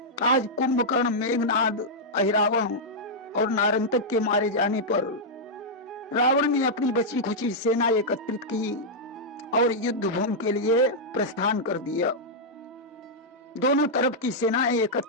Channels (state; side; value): normal; both; correlation -0.07